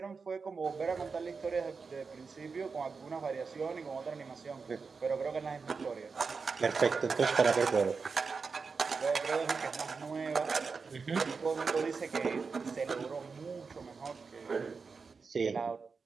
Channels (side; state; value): left; quieter; 4.9 dB